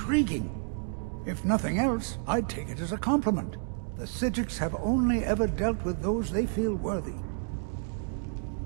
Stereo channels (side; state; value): left; silent; digital silence